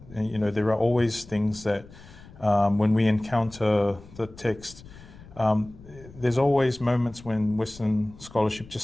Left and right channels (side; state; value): left; noise; rumble, 20 dB below the sound